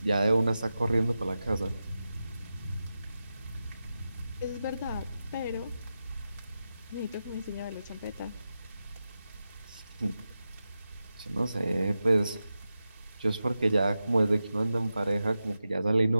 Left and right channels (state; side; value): inverted; both; correlation -0.91